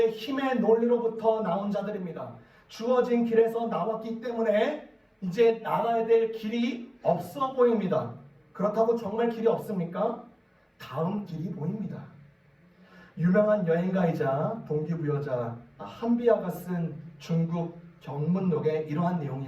힘의 논리로부터 나온 자들입니다. 주어진 길에서 나왔기 때문에 이제 나가야 될 길이 없어 보입니다. 그렇다고 정말 길이 없습니까? 다음 길이 보입니다. 유명한 여행가이자 동기부여자 한비아가 쓴 중국 경문록에 이러한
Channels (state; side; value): identical; both; correlation 1.00